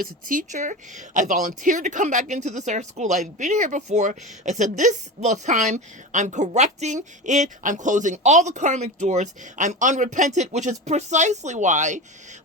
a teacher. I volunteered to come back into this art school. I've been here before. I said this time I'm correcting it. I'm closing all the karmic doors. I'm unrepentant, which is precisely why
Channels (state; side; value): normal; both; correlation 0.26